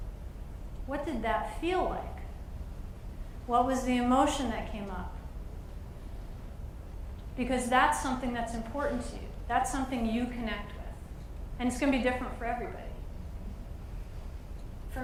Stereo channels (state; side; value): identical; both; correlation 1.00